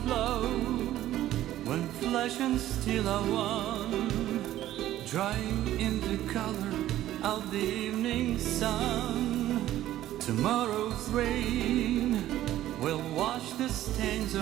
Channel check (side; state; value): left; quieter; 13.6 dB